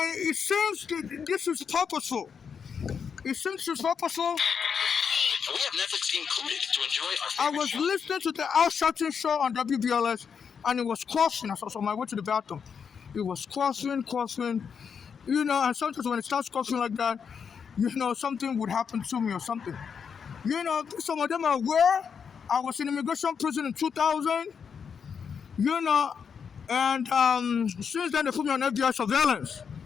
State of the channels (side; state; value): right; quieter; 6.6 dB